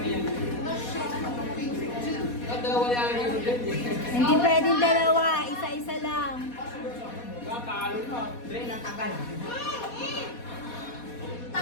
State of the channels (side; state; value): right; late; 4.2 ms